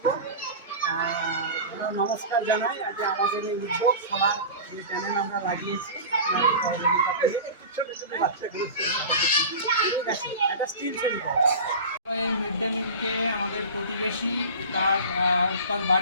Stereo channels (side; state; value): both; inverted; correlation -0.32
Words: আমরা নমস্কার জানাই যে আমাদের এই উদ্যোগ সবার যে চ্যানেল আমরা লাগিয়েছি আপনার সহযোগিতা পেয়ে একটু ছোটো ছোটো বাচ্চাগুলো ঠিক আছে একটা স্টিল ছবি করা। এই মিড ডে মিলকে আমাদের প্রতিবেশী তার